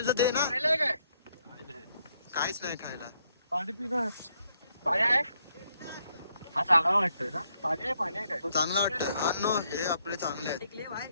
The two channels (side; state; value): both; inverted; correlation -0.74